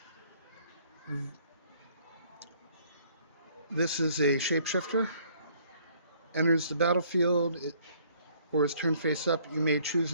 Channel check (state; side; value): inverted; both; correlation -0.61